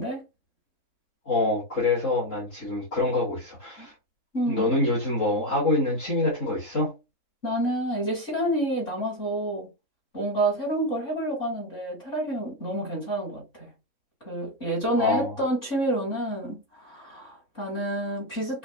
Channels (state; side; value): late; right; 3.6 ms